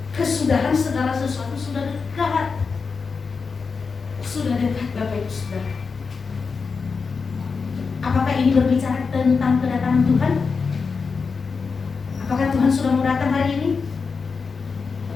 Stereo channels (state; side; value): quieter; right; 5.0 dB